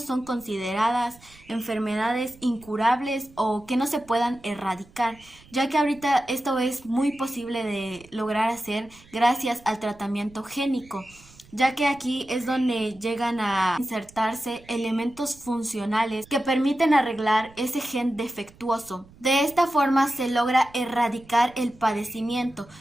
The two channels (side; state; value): right; noise; rumble, 25 dB below the sound